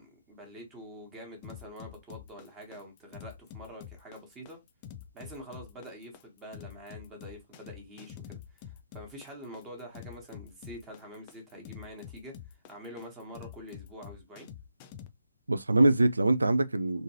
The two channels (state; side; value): inverted; both; correlation -0.89